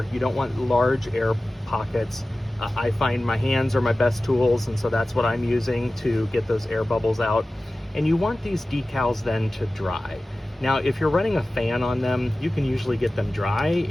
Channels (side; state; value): both; normal; correlation 0.96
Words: You don't want large air pockets. I find my hands are my best tools, and so that's what I'm using to get those air bubbles out. And you want these decals then to dry. Now, if you're running a fan on them, you can usually get them dry